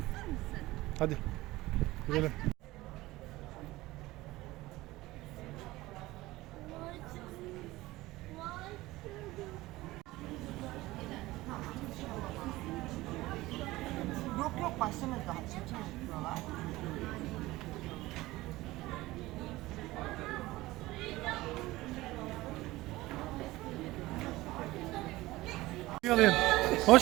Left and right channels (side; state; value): left; quieter; 18.7 dB